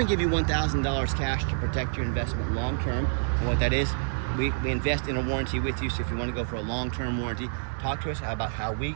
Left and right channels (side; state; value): left; silent; 60 dB below the other